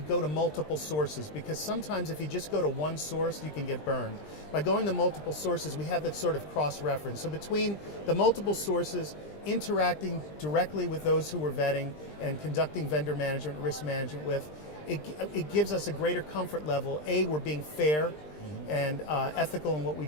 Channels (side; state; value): right; late; 20 ms